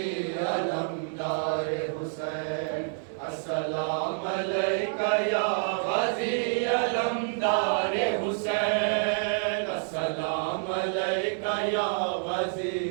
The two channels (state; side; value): silent; left; 59 dB below the other